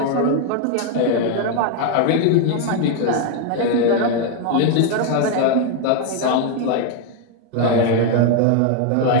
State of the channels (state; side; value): different; both; correlation 0.01